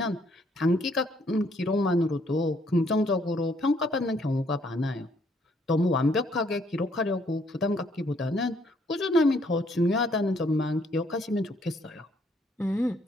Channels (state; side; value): normal; both; correlation 0.67